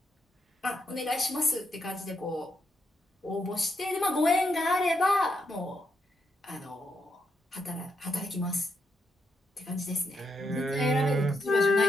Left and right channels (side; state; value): both; normal; correlation 0.80